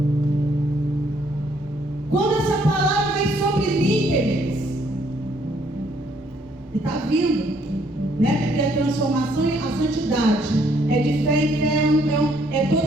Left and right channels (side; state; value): both; normal; correlation 0.67